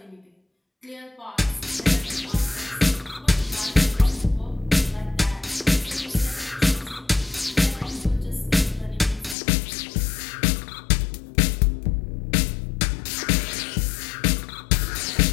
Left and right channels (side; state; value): right; drops out; at 9.3 s